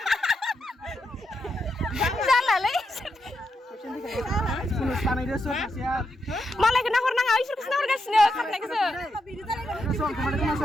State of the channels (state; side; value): normal; both; correlation 0.83